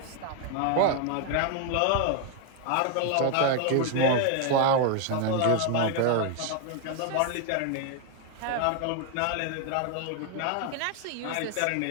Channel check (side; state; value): both; different; correlation 0.01